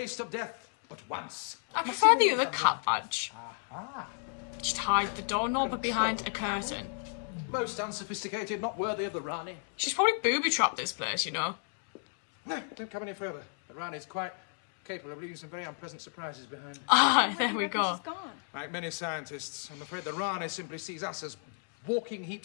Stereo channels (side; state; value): right; silent; 56 dB below the other